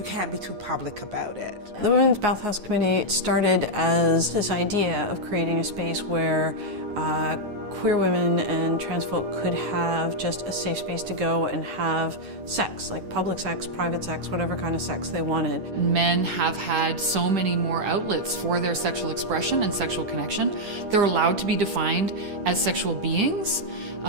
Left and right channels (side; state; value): left; late; 10 ms